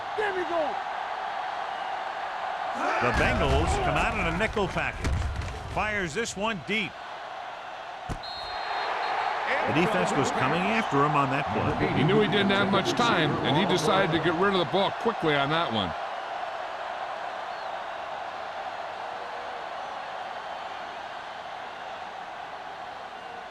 There we go. The Bengals come out in a nickel package. Fires this one deep. The defense was coming after him on that play. He knew he didn't have much time, and he decided to get rid of the ball quickly on that one.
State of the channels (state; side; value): identical; both; correlation 1.00